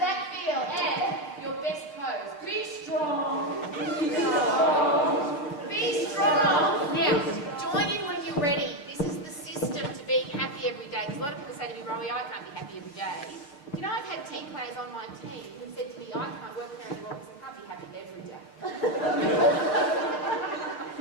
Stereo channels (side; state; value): right; late; 6.8 ms